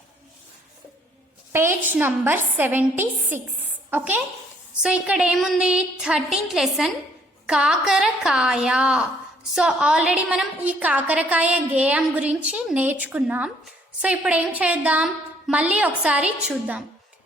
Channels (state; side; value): normal; both; correlation 0.64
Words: page number 76. Okay, so ఇక్కడ ఏముంది, 13th లెసన్ కాకరకాయ. సో ఆల్రెడీ మనం ఈ కాకరకాయ గేయం గురించి నేర్చుకున్నాం. సో ఇప్పుడు ఏం చేద్దాం, మళ్ళీ ఒకసారి చూద్దాం.